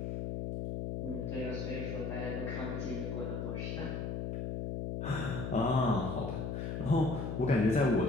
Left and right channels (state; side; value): noise; left; hum, 3 dB below the sound